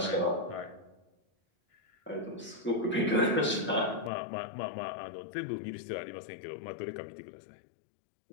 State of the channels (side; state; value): right; drops out; at 4.1 s